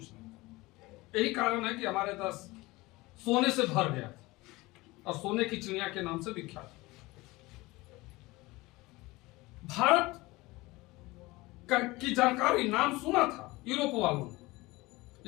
नहीं था। यही कारण है कि हमारे देश सोने से भर गया था और सोने की चिड़िया के नाम से विख्यात। भारत की जानकारी, नाम सुना था यूरोप वालों ने,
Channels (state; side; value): quieter; right; 21.2 dB